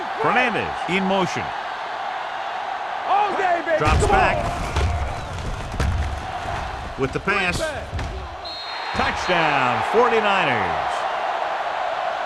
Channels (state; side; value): identical; both; correlation 1.00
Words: Fernandez in motion. All day, baby. Drops Come back. on. With the pass. Touchdown, 49ers.